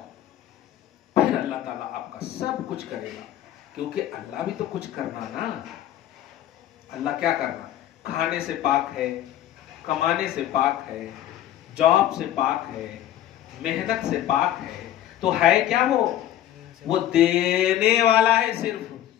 پھر اللہ تعالیٰ آپ کا سب کچھ کرے گا. کیونکہ اللہ بھی تو کچھ کرنا نا. اللہ کیا کرنا؟ کھانے سے پاک ہے, کمانے سے پاک ہے, جاب سے پاک ہے, محنت سے پاک ہے. تو ہے کیا وہ دینے والا ہے,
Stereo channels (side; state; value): right; quieter; 12.2 dB